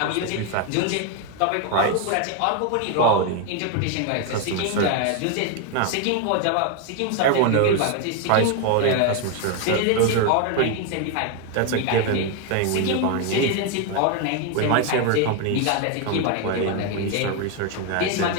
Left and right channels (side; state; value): both; different; correlation 0.01